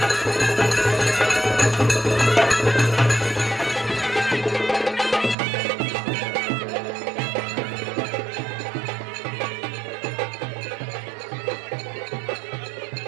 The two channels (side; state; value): left; drops out; at 5.4 s